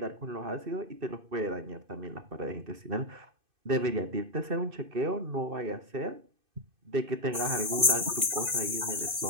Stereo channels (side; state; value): left; late; 2.6 ms